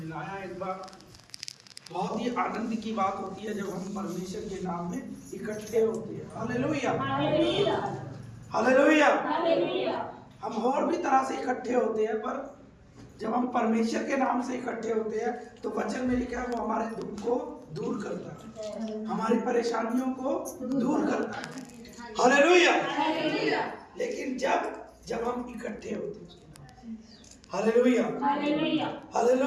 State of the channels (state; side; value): identical; both; correlation 1.00